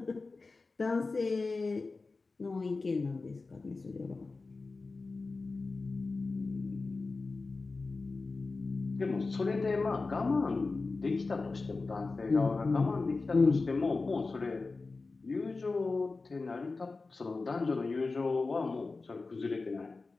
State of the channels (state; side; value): quieter; right; 3.8 dB